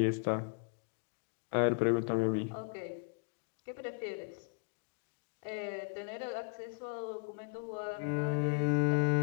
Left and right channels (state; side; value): quieter; right; 37.5 dB